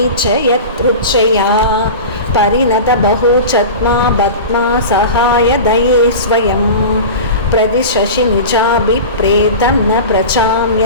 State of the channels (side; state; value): both; inverted; correlation -0.31